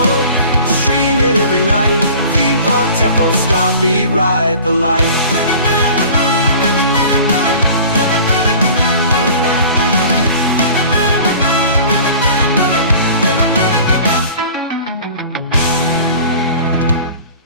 stream it every night. Theme Park Tempo, stop, beat, ride the light.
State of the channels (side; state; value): both; inverted; correlation -0.43